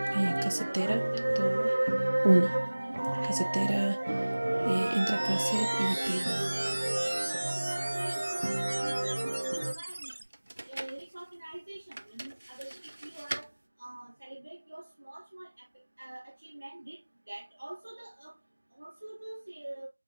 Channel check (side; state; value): both; inverted; correlation -1.00